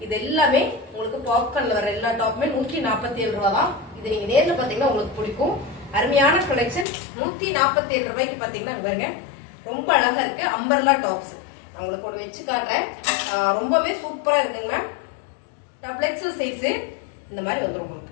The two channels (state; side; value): drops out; right; at 6.9 s